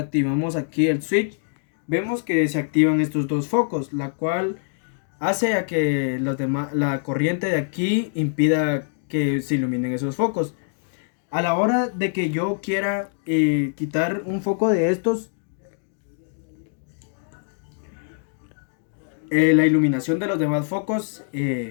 aquí el switch, vemos que se activan estos dos focos, la cual hace a que la corriente de aquí impida que se iluminen esos focos. A la hora de que yo quiera quitar un foco de estos, la iluminación de los demás focos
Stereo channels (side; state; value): right; silent; digital silence